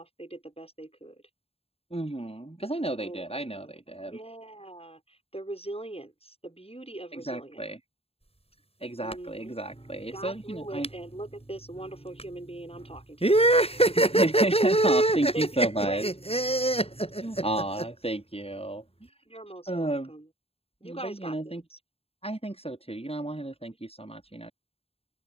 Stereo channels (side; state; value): right; late; 0.28 ms